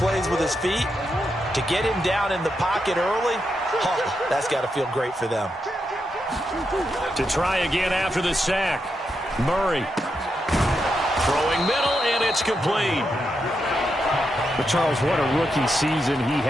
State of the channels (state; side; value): normal; both; correlation 0.84